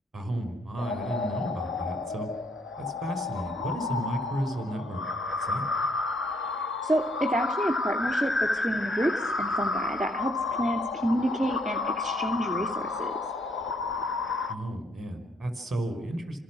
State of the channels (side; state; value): both; normal; correlation 0.69